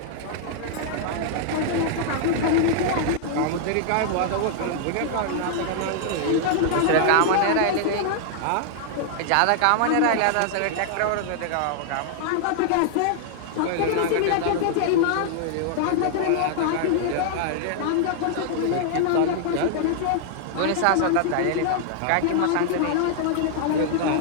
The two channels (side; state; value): both; different; correlation -0.01